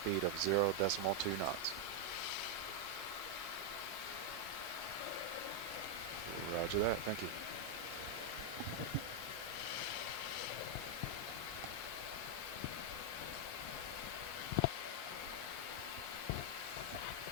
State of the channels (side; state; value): both; normal; correlation 0.01